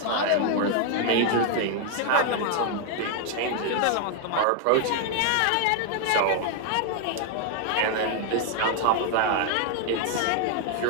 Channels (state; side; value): different; both; correlation 0.00